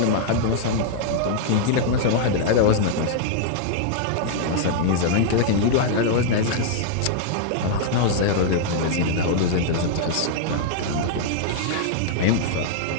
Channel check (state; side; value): different; both; correlation -0.01